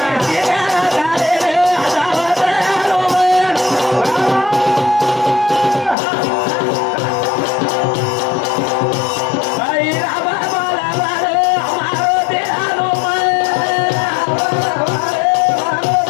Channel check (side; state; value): right; drops out; at 6.0 s